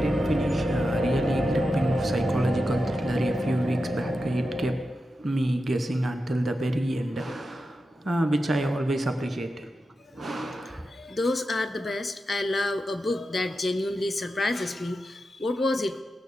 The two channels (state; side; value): normal; both; correlation 0.90